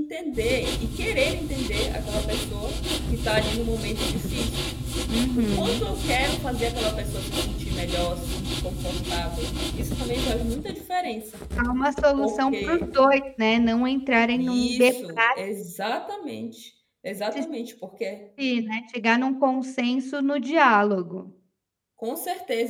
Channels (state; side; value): identical; both; correlation 1.00